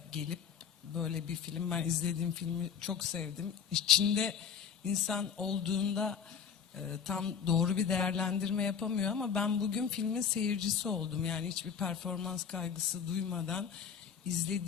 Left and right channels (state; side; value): quieter; right; 7.2 dB